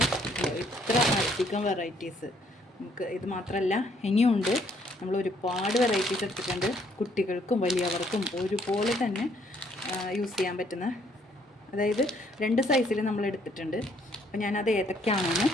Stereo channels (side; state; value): both; normal; correlation 0.67